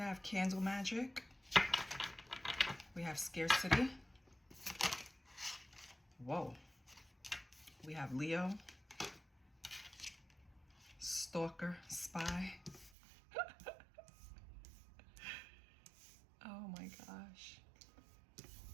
have candle magic. We have scarcity. Whoa. We have Leo. Stalker, spy. Oh my gosh.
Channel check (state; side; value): drops out; left; at 12.9 s